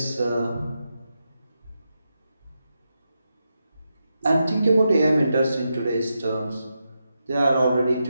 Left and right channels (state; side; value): inverted; both; correlation -0.86